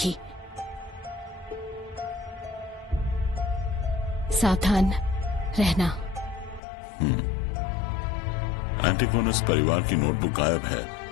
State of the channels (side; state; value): right; drops out; at 6.6 s